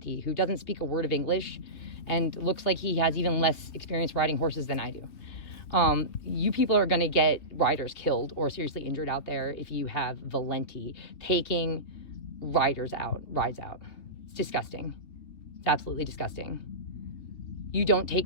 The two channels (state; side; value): late; right; 2.9 ms